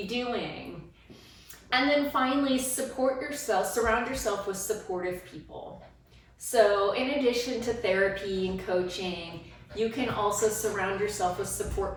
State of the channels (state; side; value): identical; both; correlation 1.00